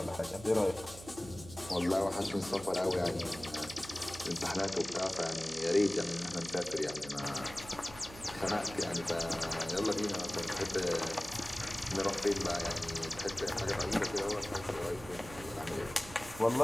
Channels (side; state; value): right; noise; hum, 16 dB below the sound